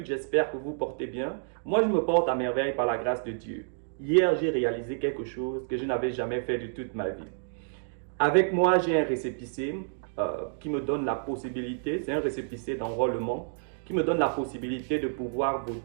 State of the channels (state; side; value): silent; left; digital silence